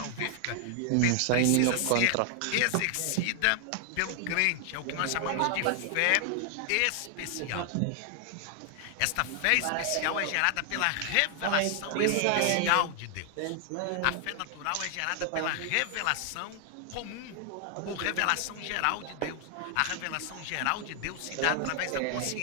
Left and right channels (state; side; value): different; both; correlation 0.00